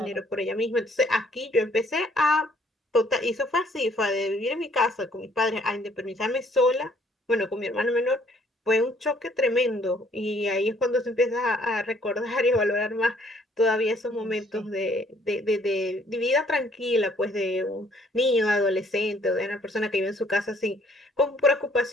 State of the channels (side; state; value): both; normal; correlation 0.63